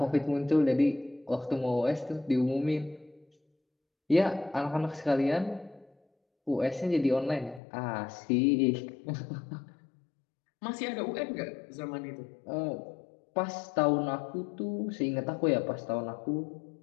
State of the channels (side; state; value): right; drops out; at 7.6 s